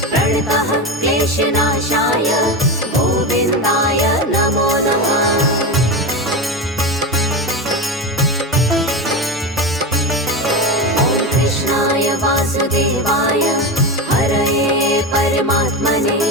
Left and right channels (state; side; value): normal; both; correlation 0.20